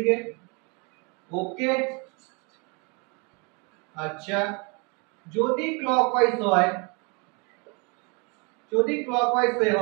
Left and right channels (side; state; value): left; quieter; 31.7 dB